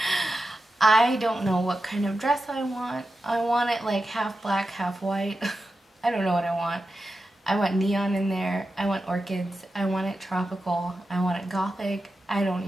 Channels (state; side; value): normal; both; correlation 0.91